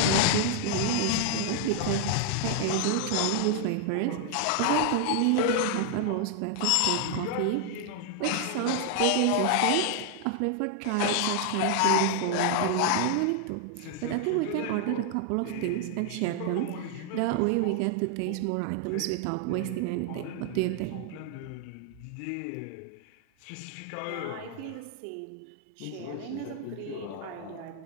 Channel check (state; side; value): different; both; correlation 0.00